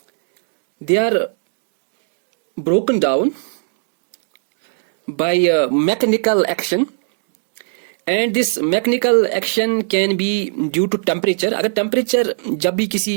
they are broken down by mechanical action, and this mechanical action can be due to temperature. अगर temperature जब भी किसी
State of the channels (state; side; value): silent; left; digital silence